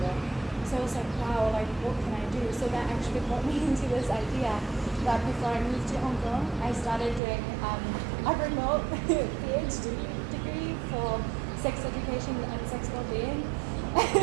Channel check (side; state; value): left; drops out; at 7.2 s